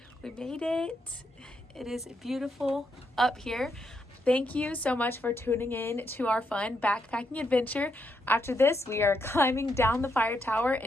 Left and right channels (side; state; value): both; normal; correlation 0.79